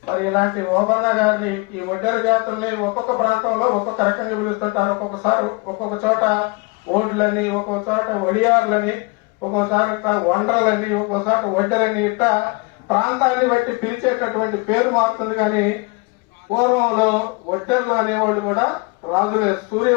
మరి ఇలాంటి ఓబన్న గారిని ఈ ఒడ్డెర జాతుల్ని ఒక్కొక్క ప్రాంతంలో ఒక్కొక్క రకంగా పిలుస్తుంటారు. ఒక్కొక్కసారి ఒక్కొక్క చోట ఓడ్లని, ఒక్కొక్క చోట ఒడియార్లని, ఒక్కోసారి వండ్రలని, ఒక్కోసారి ఒడ్డెరని, ఇట్లా ప్రాంతాన్ని బట్టి పిలిచేటటువంటి పేరు మారుతుంది. కానీ పూర్వంలో ఒడ్డెర్లు అనేవాళ్ళు కూడా రాజులే,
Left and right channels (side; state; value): right; quieter; 28.2 dB